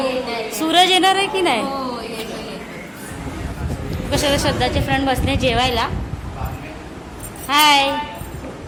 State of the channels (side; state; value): both; identical; correlation 1.00